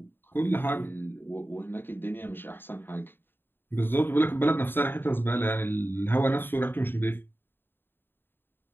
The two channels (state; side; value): late; right; 0.099 ms